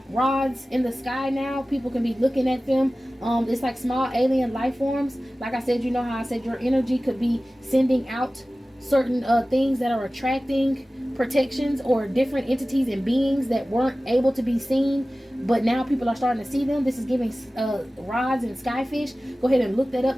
rods in the sky now. People can be looking at them. It's like small alien life forms. Like I said, you know how I said your energy could be sending out certain things that are attracting protections or different entities and beings that weren't able to be seen, but now people are starting to see them. This is giving rods and skyfish. Go ahead and look that up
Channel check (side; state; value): both; normal; correlation 0.96